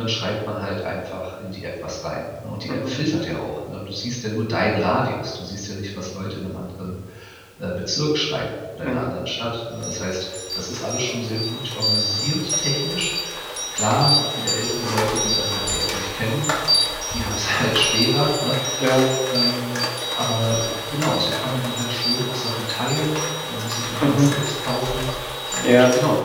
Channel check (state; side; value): identical; both; correlation 1.00